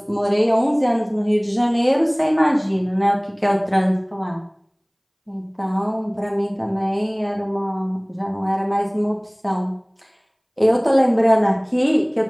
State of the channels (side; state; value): both; identical; correlation 1.00